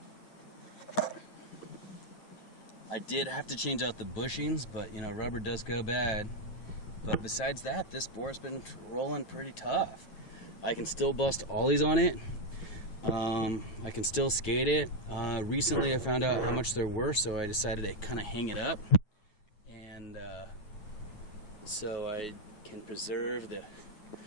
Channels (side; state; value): right; late; 9.3 ms